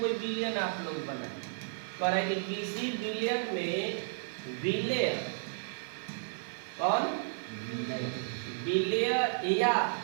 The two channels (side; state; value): left; silent; 56 dB below the other